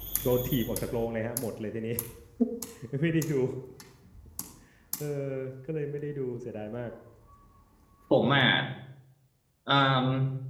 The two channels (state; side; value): identical; both; correlation 1.00